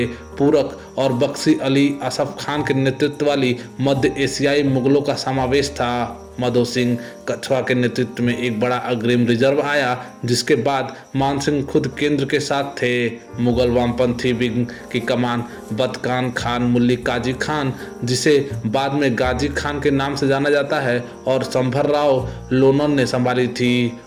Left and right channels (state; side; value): identical; both; correlation 1.00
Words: पूरक और बख्शी अली असफ खान के नेतृत्व वाली मध्य एशियाई मुगलों का समावेश था। माधो सिंह कछवा के नेतृत्व में एक बड़ा अग्रिम रिजर्व आया, जिसके बाद मान सिंह खुद केंद्र के साथ थे। मुगल वामपंथी विंग की कमान बदकान खान मुल्ली काजी खान, जिसे बाद में गाजी खान के नाम से जाना जाता है, और संभर राव लोनन ने संभाली थी